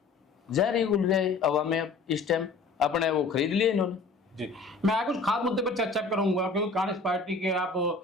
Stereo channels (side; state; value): right; quieter; 3.9 dB